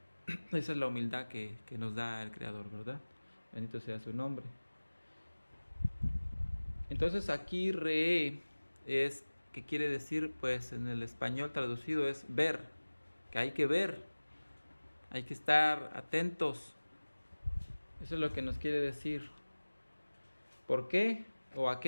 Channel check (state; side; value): inverted; both; correlation -1.00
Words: esa es la humildad que nos da el Creador, ¿verdad? Bendito sea su nombre. Entonces aquí re es, que quiere decir, pues en el español traducido es ver, que hay que ver, hay que estar atentos. Eso es lo que nos quiere decir. ¿Por qué? ¿O a